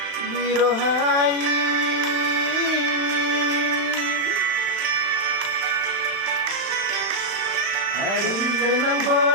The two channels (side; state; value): left; late; 36 ms